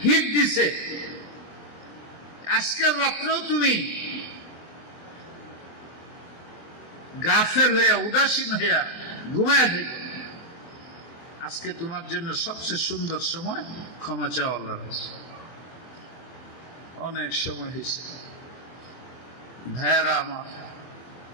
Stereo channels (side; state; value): right; late; 24 ms